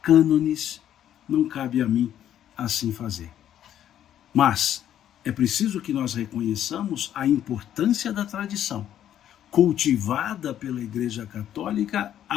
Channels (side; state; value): right; quieter; 10.8 dB